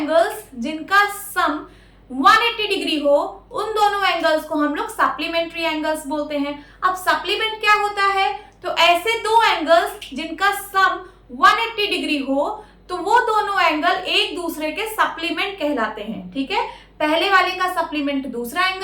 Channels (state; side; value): identical; both; correlation 1.00